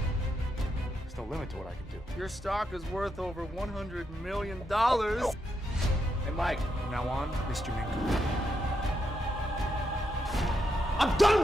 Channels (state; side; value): normal; both; correlation 0.82